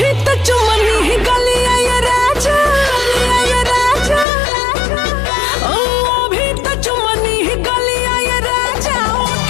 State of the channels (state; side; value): drops out; right; at 4.2 s